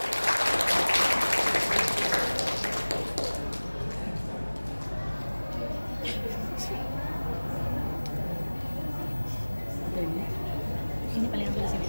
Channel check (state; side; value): inverted; both; correlation -1.00